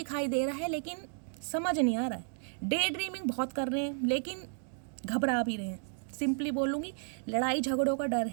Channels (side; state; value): left; silent; 56 dB below the other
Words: दे रहा है, लेकिन समझ नहीं आ रहा है। डे ड्रीमिंग बहुत कर रहे हैं लेकिन घबरा भी रहे हैं। सिंपली बोलूँगी, लड़ाई झगड़ों का डर